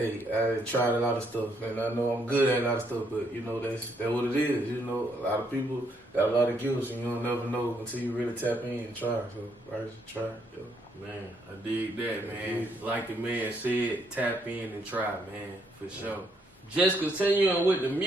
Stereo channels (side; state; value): both; normal; correlation 0.73